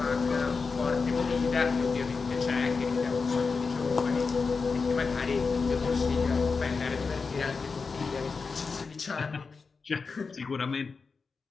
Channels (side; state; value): right; quieter; 4.7 dB